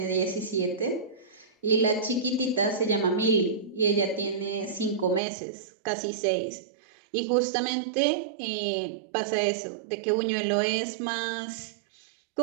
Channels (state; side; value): drops out; left; at 5.2 s